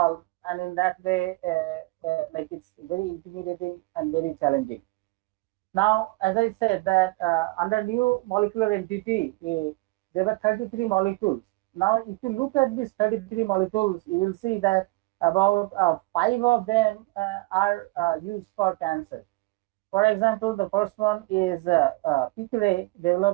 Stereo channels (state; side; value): quieter; left; 23.6 dB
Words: and in that way, like it's very intimidating and very challenging. Now, as I said, that under new molecular entity, there were 33 molecules. Now, if you look at these 33 molecules, you will see that about five of them are used for cancer. For example, the first one is Picre,